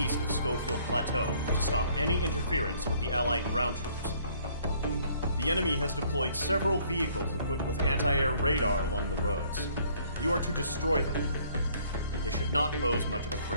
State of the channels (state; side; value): inverted; both; correlation -0.61